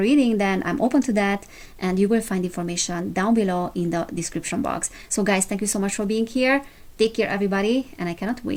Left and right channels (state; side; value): identical; both; correlation 1.00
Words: then I'm open to that, and you will find information down below in the description box. So guys, thank you so much for being here. Take care everybody, and I cannot